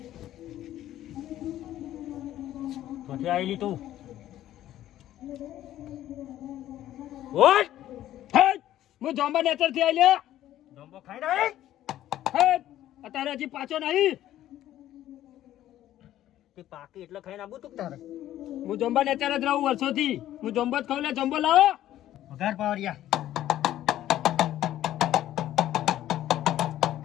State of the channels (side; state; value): right; quieter; 13.0 dB